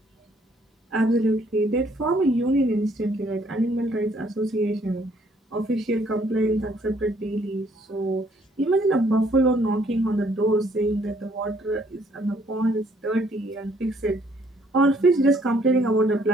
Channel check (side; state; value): both; normal; correlation 0.65